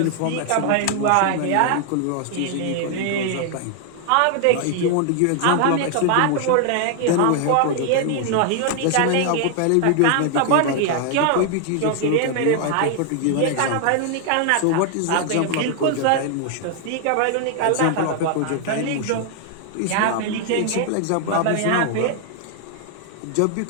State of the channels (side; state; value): both; different; correlation 0.00